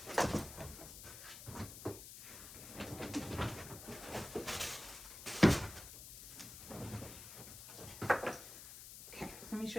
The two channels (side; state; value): left; noise; hiss, 12 dB below the sound